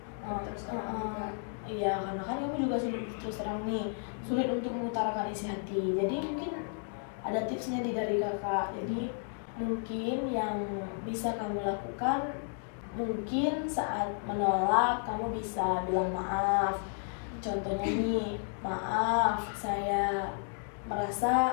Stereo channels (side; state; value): right; silent; 56 dB below the other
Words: Iya, karena kan kamu juga sulit terus terang nih, sulit untuk mengutarakan isi hati. Jadi mungkin ada tipsnya dari kakak. Jadi mungkin yang bisa kamu lakukan, mungkin saat menolak kamu bisa bilang maaf. Contohnya nih, maaf, saya merasa